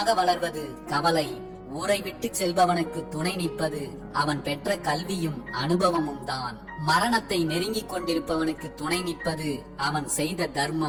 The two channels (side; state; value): both; identical; correlation 1.00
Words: வளர்வது கவலை. ஊரை விட்டு செல்பவனுக்கு துணை நிற்பது அவன் பெற்ற கல்வியும் அனுபவமும் தான். மரணத்தை நெருங்கிக் கொண்டிருப்பவனுக்கு துணை நிற்பது அவன் செய்த